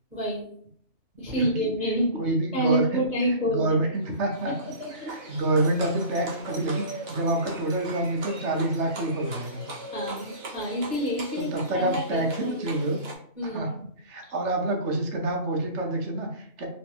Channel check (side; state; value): left; late; 2.9 ms